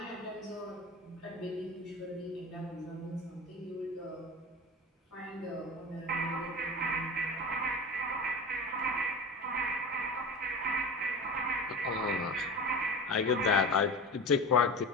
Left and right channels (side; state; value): both; normal; correlation 0.30